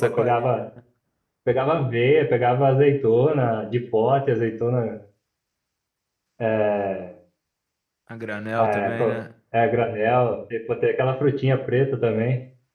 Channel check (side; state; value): both; identical; correlation 1.00